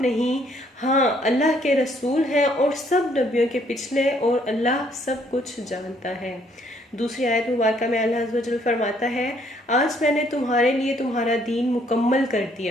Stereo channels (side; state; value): both; normal; correlation 0.66